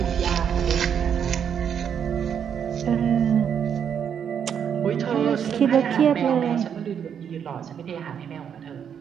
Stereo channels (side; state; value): left; quieter; 8.0 dB